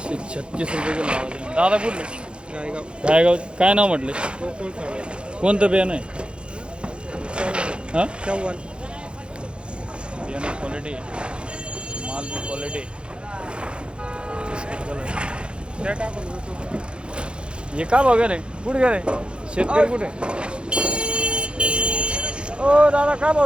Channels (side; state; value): left; late; 0.055 ms